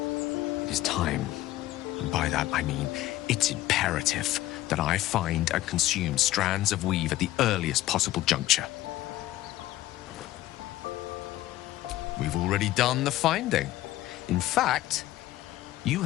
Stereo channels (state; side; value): quieter; right; 15.5 dB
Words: It is time, and by that I mean it's imperative that I find and consume strands of weave at the earliest possible juncture. We've already done the finding. In fact, You